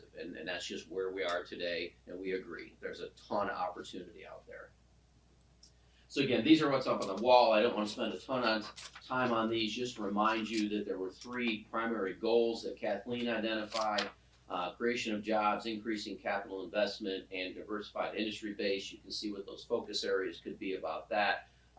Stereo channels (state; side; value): identical; both; correlation 1.00